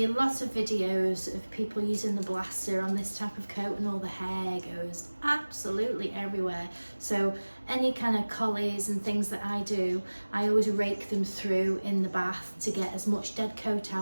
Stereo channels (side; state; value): both; inverted; correlation -1.00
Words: a lot of videos of people using the blaster on this type of coat and all the hair goes absolutely everywhere. So any kind of collies and things that I do, I always rake them through in the bath to get as much dead coat